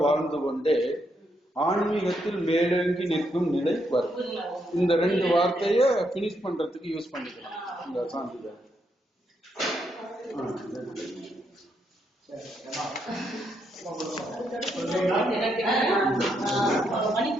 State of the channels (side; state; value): both; normal; correlation 0.78